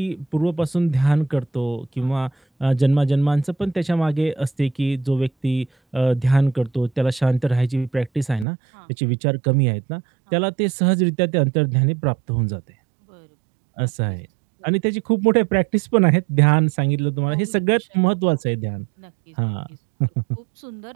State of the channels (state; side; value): drops out; left; at 8.5 s